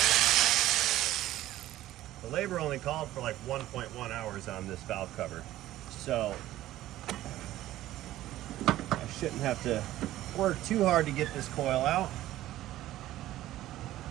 The labor only called for like 1.1 hours on this valve cover. So I shouldn't have to work too hard to get this coil out.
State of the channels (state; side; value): quieter; left; 14.6 dB